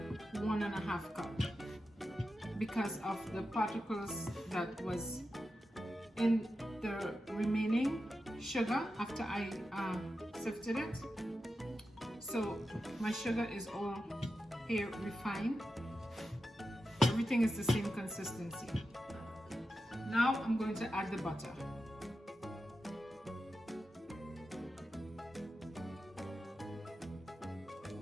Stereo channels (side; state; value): both; normal; correlation 0.90